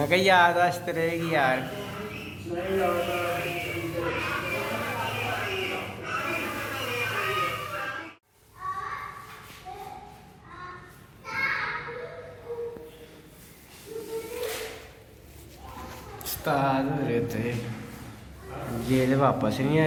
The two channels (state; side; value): identical; both; correlation 1.00